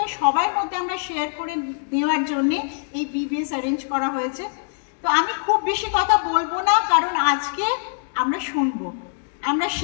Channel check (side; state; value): right; silent; digital silence